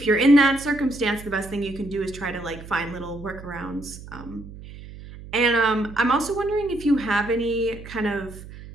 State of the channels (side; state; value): right; noise; hum, 15 dB below the sound